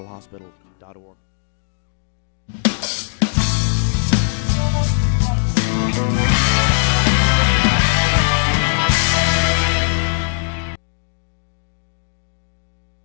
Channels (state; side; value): silent; right; digital silence